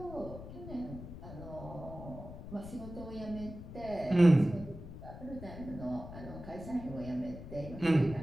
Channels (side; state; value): left; noise; rumble, 12 dB below the sound